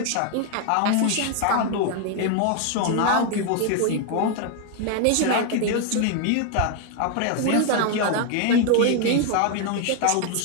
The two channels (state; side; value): different; both; correlation 0.01